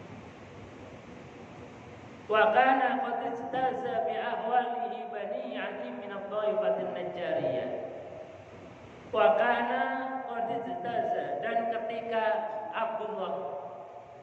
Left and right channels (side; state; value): both; identical; correlation 1.00